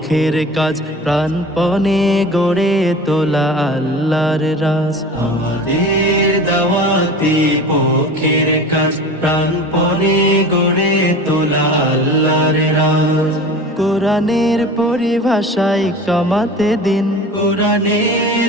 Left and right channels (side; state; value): both; normal; correlation 0.37